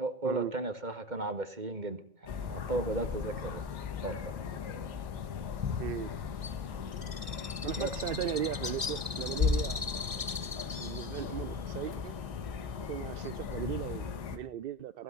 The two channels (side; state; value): left; late; 1.6 ms